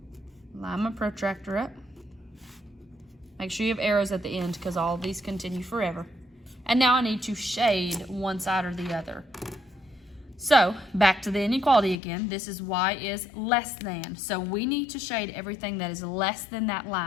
Line my protractor up. Make sure you have arrows at the end because all of these continue forever. And now I need to shade one side or the other. So back to the inequality again. This is y is less than. So we need to shade everything that is less than that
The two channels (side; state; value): right; drops out; at 12.0 s